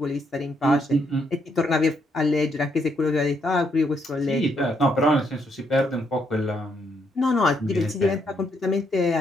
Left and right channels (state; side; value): normal; both; correlation 0.74